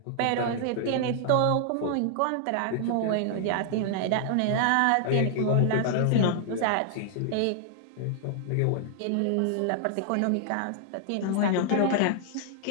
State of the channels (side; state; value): both; different; correlation -0.01